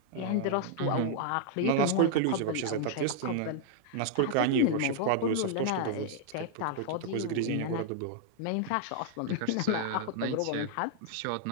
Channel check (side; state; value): both; different; correlation -0.01